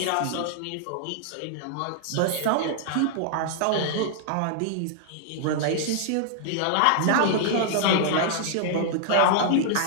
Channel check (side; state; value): both; different; correlation -0.01